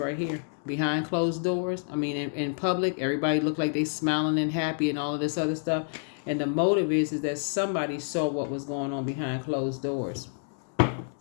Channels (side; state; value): right; silent; digital silence